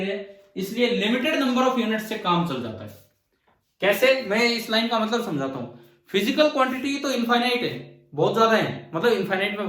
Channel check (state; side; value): identical; both; correlation 1.00